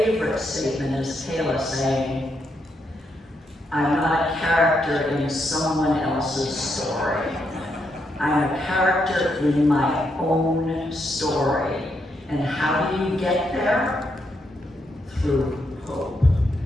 statement is Kayla saying, I'm not a character in someone else's story. I'm a character in my own story. And how do you get there? Through hope.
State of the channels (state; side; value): normal; both; correlation 0.79